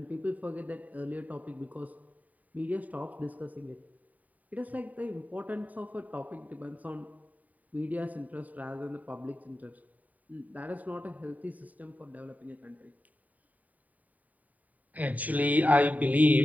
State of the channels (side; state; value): left; late; 0.073 ms